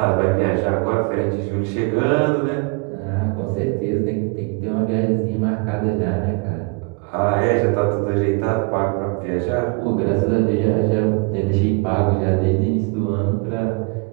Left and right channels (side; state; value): left; quieter; 30.5 dB